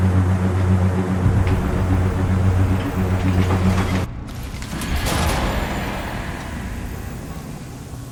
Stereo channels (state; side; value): identical; both; correlation 1.00